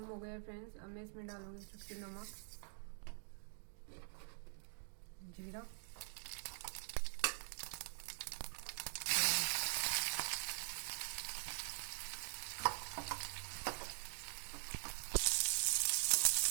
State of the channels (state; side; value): silent; left; digital silence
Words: हो गया फ्रेंड्स। अब मैं इसमें डालूंगी चुटकी नमक, जीरा,